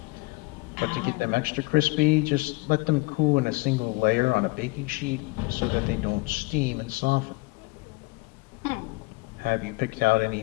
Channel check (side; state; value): right; quieter; 25.1 dB